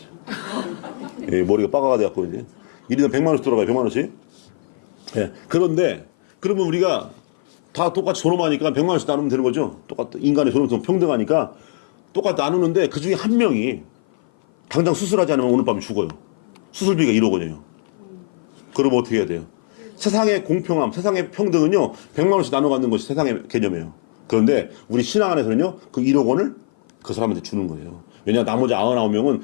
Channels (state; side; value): silent; right; 55 dB below the other